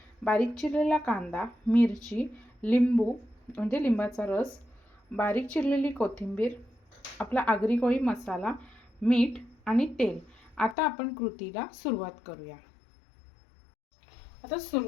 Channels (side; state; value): right; drops out; at 10.8 s